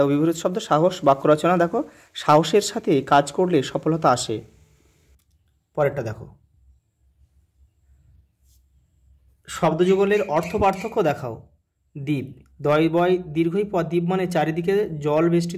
বিপরীত শব্দ সাহস। বাক্য রচনা: দেখো সাহসের সাথে কাজ করলে সফলতা আসে। পরেরটা দেখো, শব্দযুগলের অর্থ পার্থক্য দেখাও। দ্বীপ, দয় বয় দীর্ঘই পর দ্বীপ মানে চারিদিকে জল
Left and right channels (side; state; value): both; identical; correlation 1.00